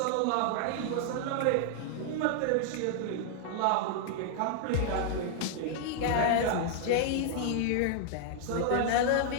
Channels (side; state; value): both; different; correlation 0.00